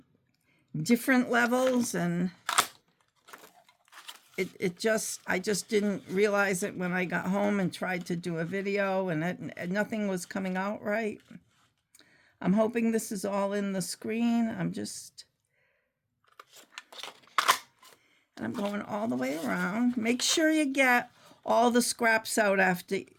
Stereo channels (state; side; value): identical; both; correlation 1.00